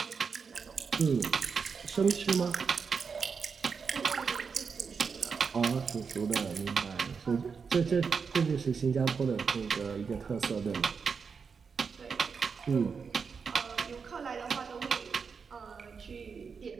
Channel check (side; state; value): left; quieter; 5.6 dB